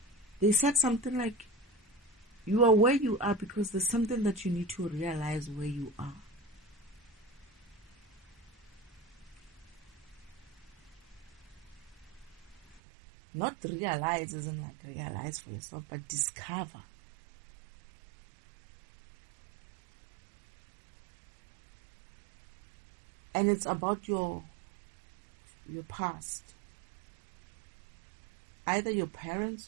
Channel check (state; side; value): drops out; left; at 12.8 s